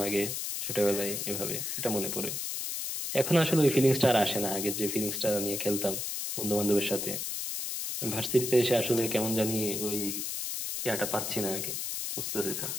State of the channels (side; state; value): left; noise; hiss, 3 dB below the sound